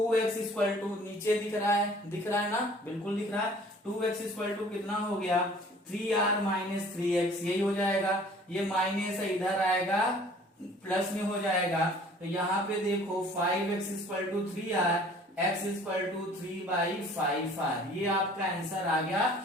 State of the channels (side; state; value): both; normal; correlation 0.52